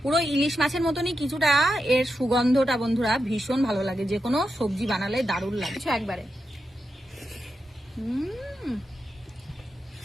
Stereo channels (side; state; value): both; normal; correlation 0.88